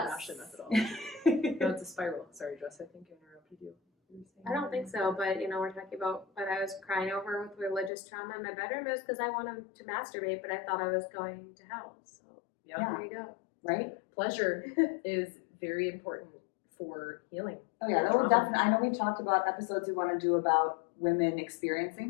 an Ashley methodology. No, it's a spiral. Sorry, Jess, I think I interrupted you. I don't think so, but you know, we're talking about what I was crying over with religious trauma in my bedroom. It was because I wanted to masturbate, but I thought I was going to hell. So Yeah. Yeah. there you go. Right? Pleasure is very important for healing. Oh yeah, that will definitely. I know we've talked about episodes we want to do about women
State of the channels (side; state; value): right; drops out; at 7.9 s